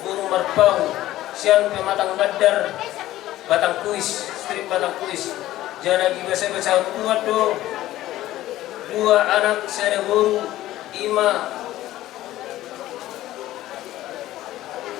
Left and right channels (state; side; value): quieter; right; 15.0 dB